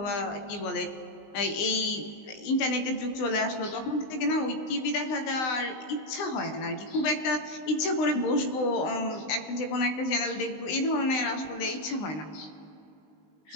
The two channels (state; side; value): late; right; 19 ms